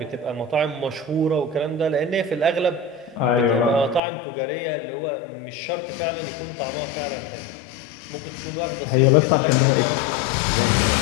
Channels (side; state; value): right; drops out; at 4.0 s